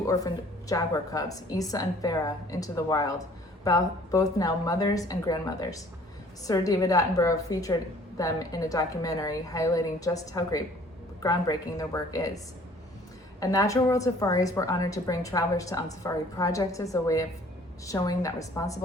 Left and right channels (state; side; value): normal; both; correlation 0.54